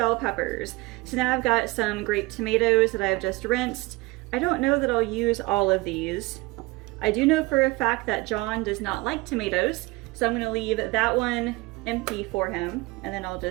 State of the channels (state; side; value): quieter; left; 22.6 dB